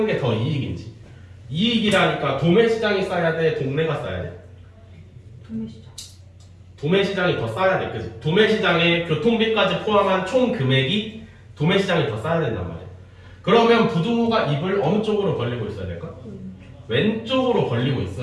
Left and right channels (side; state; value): both; identical; correlation 1.00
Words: 게 더 이익인지. 이익이라니까 도매시장이 싸야 돼, 동네가 싸야 돼? 도매시장. 도매시장이 더 싸야 돼, 그치? 도매시장에 교통비까지 포함한 총 금액이 도매시장이 더 싸야 된단 말이야. 그러면 부동호가 입을 어느 쪽으로 벌리고 있어야 될까? 왼쪽으로 벌리고